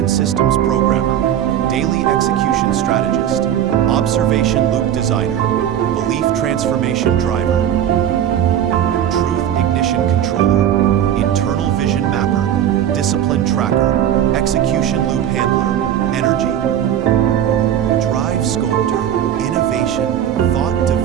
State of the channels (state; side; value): quieter; left; 10.3 dB